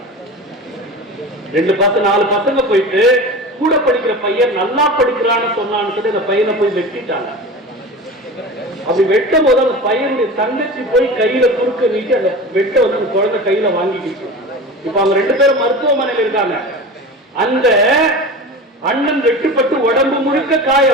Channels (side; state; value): both; normal; correlation 0.32